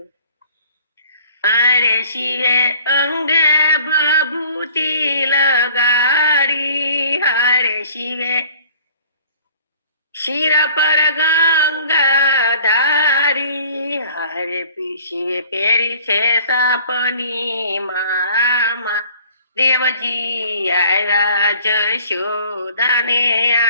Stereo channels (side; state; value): both; inverted; correlation -0.52